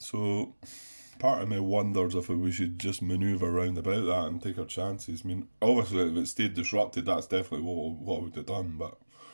part of me wonders if we should just manoeuvre around about that and take our chances. I mean, obviously, if it stayed disrupted, that's definitely what I would have done, but...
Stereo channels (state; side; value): inverted; both; correlation -1.00